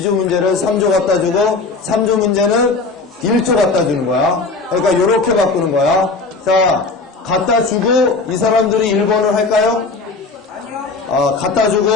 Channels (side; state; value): right; quieter; 3.9 dB